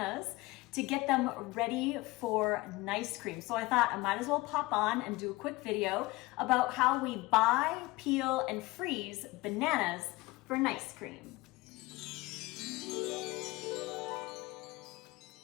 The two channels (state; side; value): quieter; right; 21.2 dB